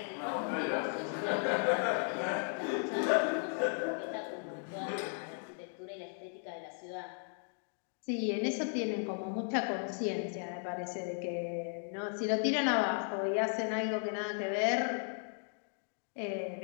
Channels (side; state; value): right; silent; 54 dB below the other